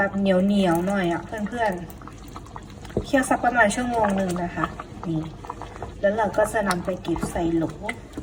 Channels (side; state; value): both; identical; correlation 1.00